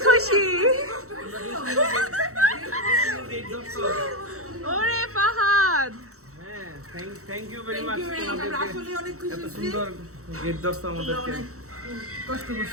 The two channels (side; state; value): left; late; 0.64 ms